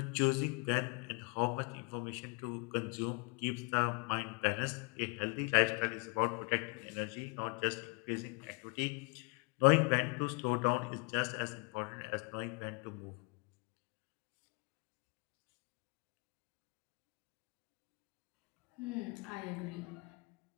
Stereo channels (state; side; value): quieter; right; 32.9 dB